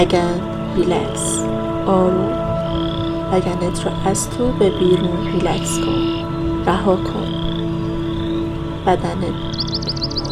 ریلکس، آروم. لگنت رو از تو به بیرون ریلکس کن، رها کن. بدنت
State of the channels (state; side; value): identical; both; correlation 1.00